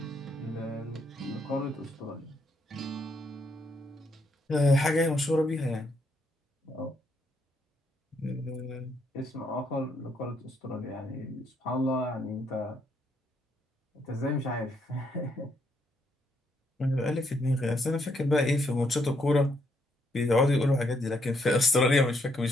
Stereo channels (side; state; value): both; normal; correlation 0.74